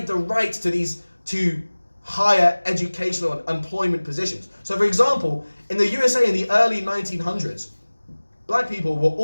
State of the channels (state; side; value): inverted; both; correlation -1.00